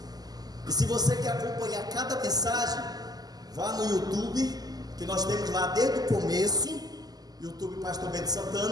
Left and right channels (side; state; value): left; late; 0.19 ms